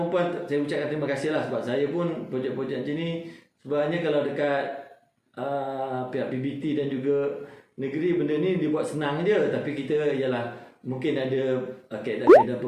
saya ucapkan terima kasih lah. Sebab saya pun projek-projek macam ni sebenarnya kalau dekat pihak PBT dan juga negeri, benda ni dibuat senang je. Tapi kita ialah mungkin ada kaedah-kaedah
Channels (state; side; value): identical; both; correlation 1.00